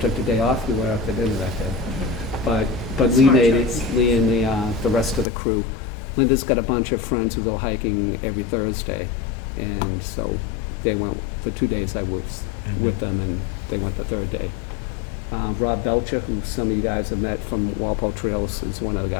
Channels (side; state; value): right; drops out; at 5.2 s